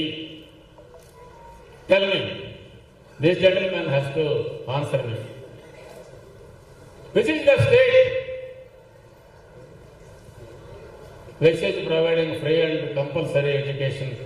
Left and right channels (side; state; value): both; identical; correlation 1.00